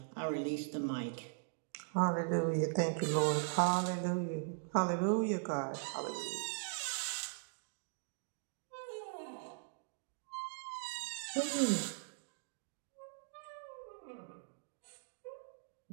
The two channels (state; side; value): silent; left; digital silence